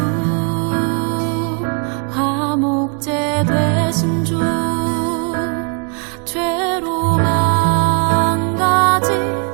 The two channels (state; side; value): quieter; left; 37.4 dB